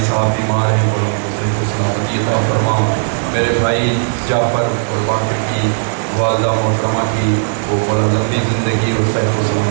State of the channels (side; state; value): left; silent; digital silence